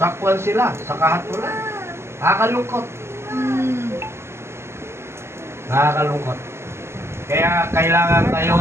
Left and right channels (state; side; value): late; left; 0.12 ms